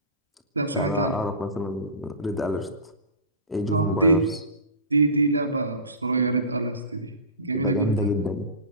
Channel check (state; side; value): inverted; both; correlation -0.31